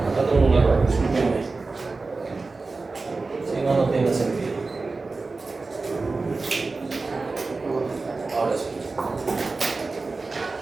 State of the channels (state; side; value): quieter; left; 3.8 dB